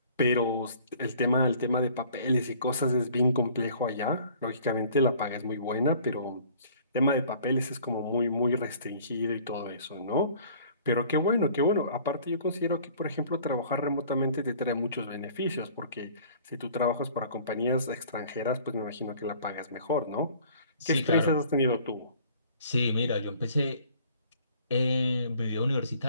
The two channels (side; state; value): both; inverted; correlation -0.52